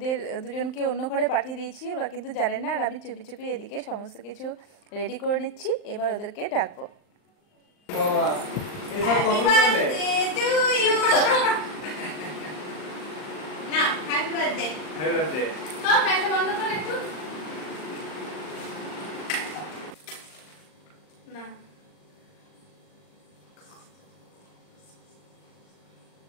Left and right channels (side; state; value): right; late; 39 ms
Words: দুজনকে অন্য ঘরে পাঠিয়ে দিয়েছি। ওরা কিন্তু জানেন না, আর আমি চুপি চুপি এদিকে সমস্ত কিছু রেডি করে নিচ্ছি। এবার ওদেরকে ডাকবো। না